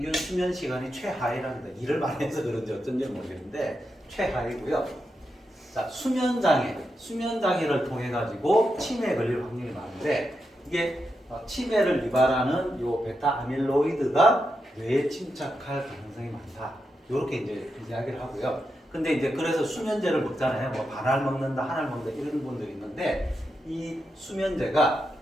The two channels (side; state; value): both; normal; correlation 0.86